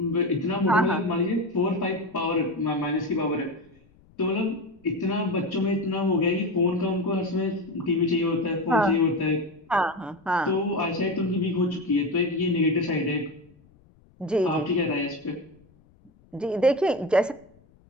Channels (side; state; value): left; noise; rumble, 30 dB below the sound